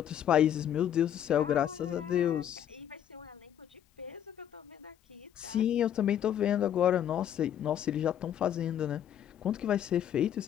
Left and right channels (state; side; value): quieter; right; 10.1 dB